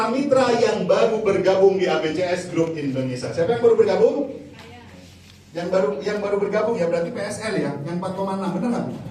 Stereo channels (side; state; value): both; identical; correlation 1.00